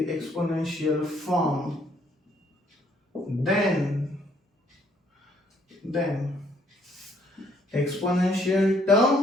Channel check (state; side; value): normal; both; correlation 0.67